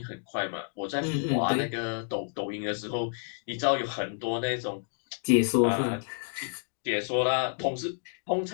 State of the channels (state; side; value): silent; right; digital silence